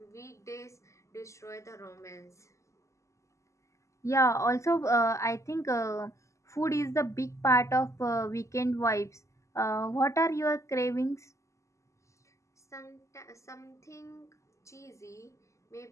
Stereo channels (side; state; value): right; late; 0.15 ms